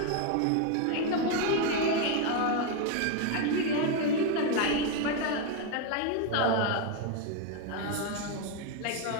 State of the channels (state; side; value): different; both; correlation 0.02